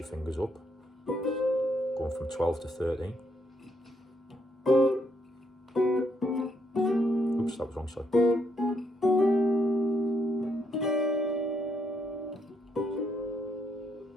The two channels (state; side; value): normal; both; correlation 0.75